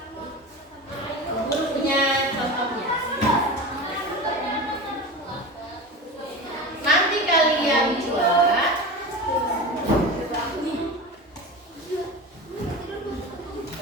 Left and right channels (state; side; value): normal; both; correlation 0.29